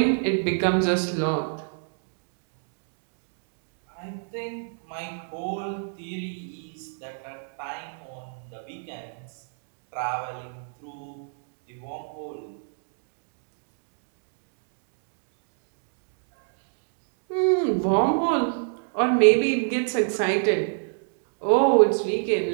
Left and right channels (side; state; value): left; silent; digital silence